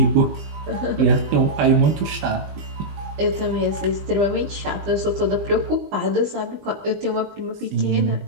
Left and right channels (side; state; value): left; late; 20 ms